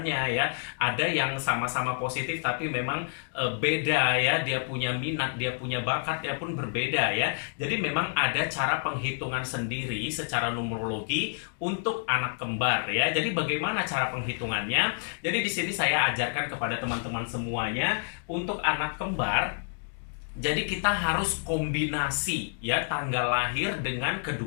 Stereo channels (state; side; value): silent; right; digital silence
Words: ya. Ada yang sama-sama positif tapi memang beda ya, dia punya minat, dia punya bakat ya pun berbeda ya. Jadi memang ada cara penghitungan sendiri secara numerologi untuk anak kembar ya. Jadi bagaimana cara penghitungannya? Jadi di sini saya ajarkan kepada teman-teman semuanya untuk anak kembar. Jadi kita harus kombinasi ya tanggal lahir dengan